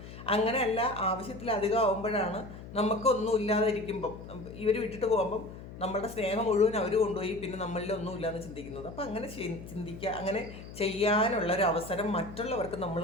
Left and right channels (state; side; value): noise; left; hum, 13 dB below the sound